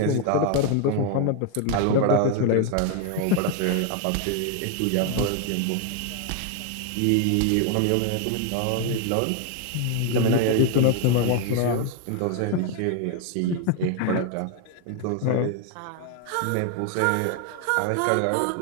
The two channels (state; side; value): different; both; correlation 0.00